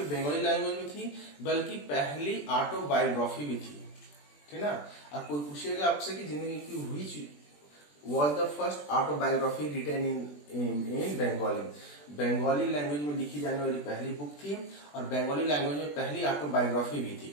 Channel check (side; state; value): right; late; 20 ms